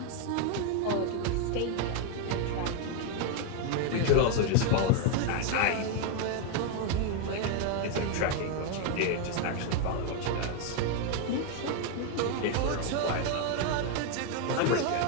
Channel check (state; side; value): different; both; correlation 0.01